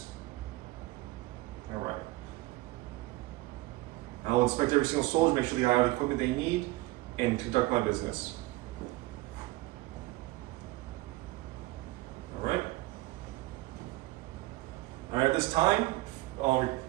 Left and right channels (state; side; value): quieter; left; 19.9 dB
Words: All right. I will inspect every single soldier, make sure they have the equipment they need, and conduct my business. All right. All right. At this time,